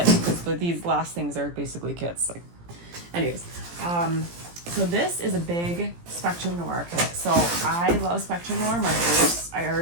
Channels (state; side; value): late; left; 17 ms